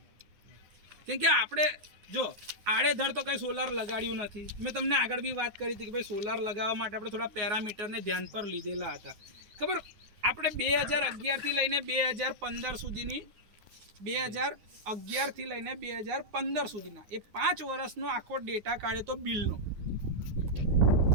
કેમ કે આપણે જો આડેધડ તો કંઈ સોલાર લગાડ્યું નથી. મેં તમને આગળ બી વાત કરી હતી કે ભાઈ સોલાર લગાવવા માટે આપણે થોડા પેરામીટરને ધ્યાન પર લીધેલા હતા. ખબર, આપણે 2011થી લઈને 2015 સુધીની 2011થી લઈને 2015 સુધીના એ 5 વર્ષનો આખો ડેટા કાઢ્યો તો બિલનો.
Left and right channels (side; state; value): left; late; 9.6 ms